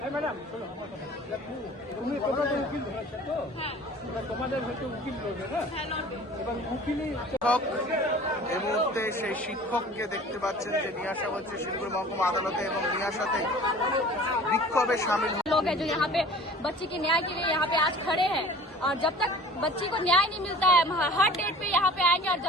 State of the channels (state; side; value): normal; both; correlation 0.45